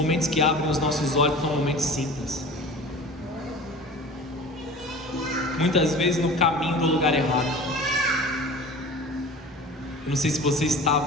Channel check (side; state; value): both; normal; correlation 0.39